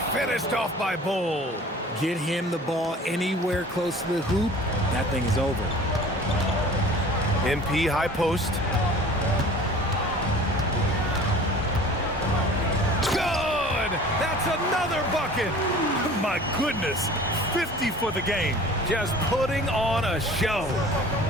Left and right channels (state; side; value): normal; both; correlation 0.45